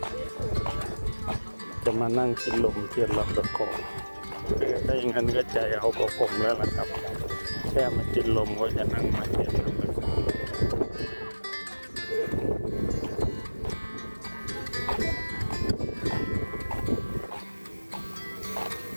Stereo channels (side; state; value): both; inverted; correlation -1.00